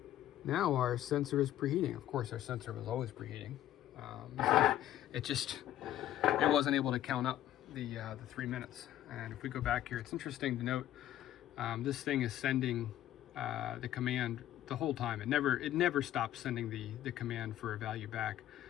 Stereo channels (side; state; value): right; quieter; 12.6 dB